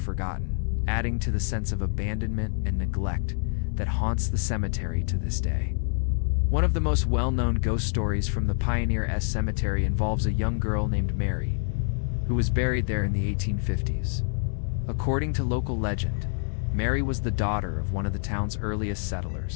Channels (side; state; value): right; silent; digital silence